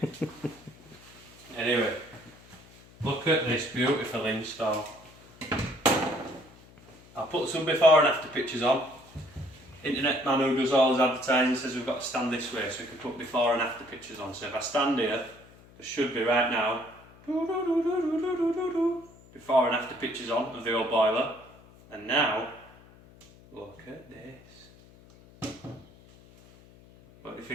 Anyway, look at this beautiful install. I'll put some before and after pictures on. Internet man who does all his advertising says we've got to stand this way so we can put before and after pictures on. So if I stand here, there should be right now before and after pictures on of the old boiler. And now, look at this. What do you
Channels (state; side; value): noise; left; hum, 24 dB below the sound